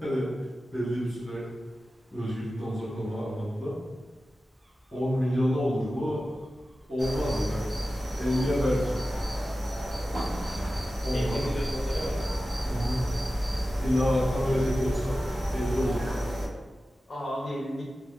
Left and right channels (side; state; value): both; normal; correlation 0.94